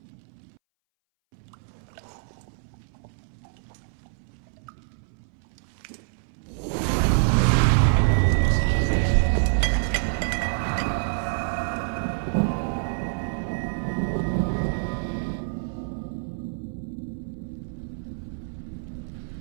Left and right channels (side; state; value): left; silent; 60 dB below the other